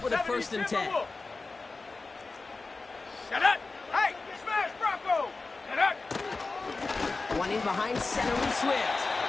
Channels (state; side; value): quieter; right; 3.8 dB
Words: with a 1st and 10. Set up. Hey, smash Bronco. Set up. One in behind center with Swift.